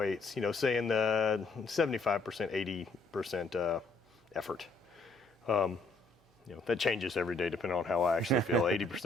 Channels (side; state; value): right; quieter; 3.3 dB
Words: Say in the 75%, 80% effort. That changes every day depending on how I actually feel.